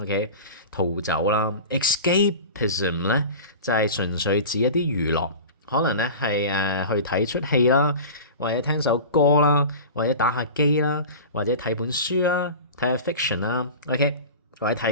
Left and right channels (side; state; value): both; inverted; correlation -0.33